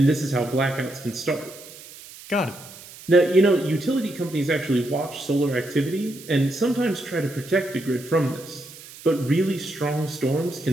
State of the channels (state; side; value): noise; right; hiss, 17 dB below the sound